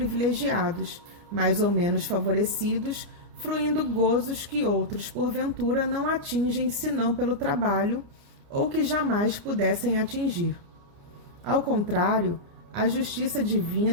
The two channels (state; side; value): late; left; 29 ms